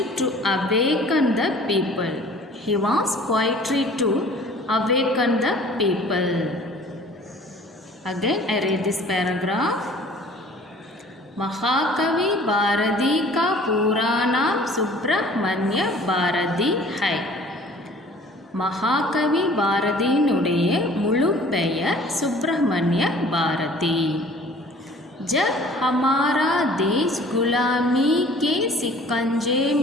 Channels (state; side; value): normal; both; correlation 0.50